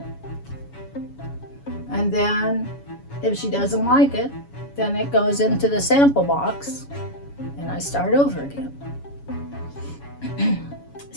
and then if she doesn't like it, then it goes into the sample box and I start over again.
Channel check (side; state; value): right; late; 7.1 ms